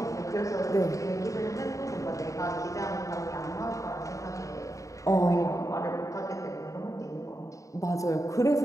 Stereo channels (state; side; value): late; right; 0.16 ms